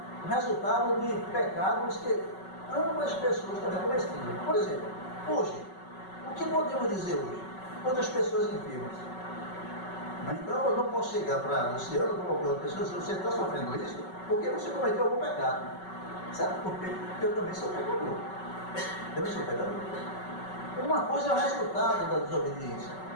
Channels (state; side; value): late; right; 5.3 ms